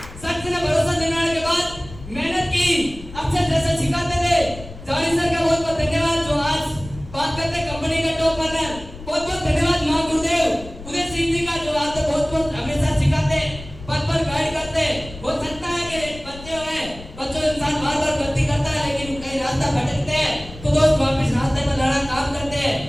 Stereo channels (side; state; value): left; noise; rumble, 15 dB below the sound